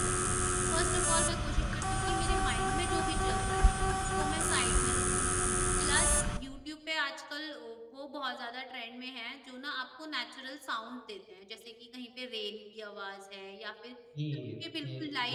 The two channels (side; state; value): both; identical; correlation 1.00